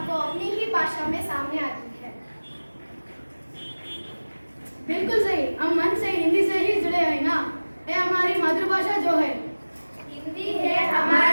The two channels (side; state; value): both; inverted; correlation -1.00